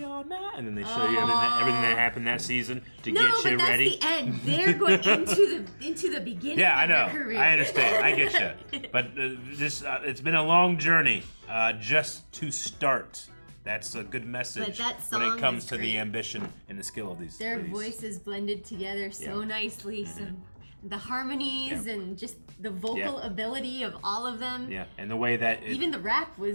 on now. And then they show you everything that happened that season to No, get but you that's ready. the end. They're going into the beginning. Yeah, I of their know. career. I understand. I get you. But it's been a long journey just to start. That's a good message But that when it song comes is to the great. ambition and the skill of these. Their ladies. voices blended together so Yeah. nicely. Some the harmonies Yeah. and just the vocal Yeah. ability of all of them. Yeah, and the way that Even the rap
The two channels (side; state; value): both; inverted; correlation -1.00